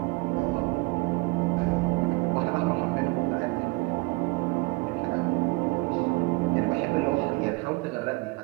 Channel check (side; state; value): left; quieter; 25.3 dB